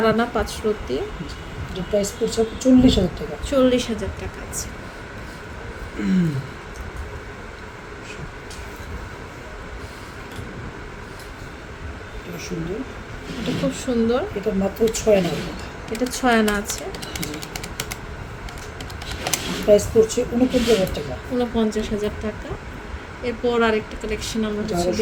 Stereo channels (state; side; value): identical; both; correlation 1.00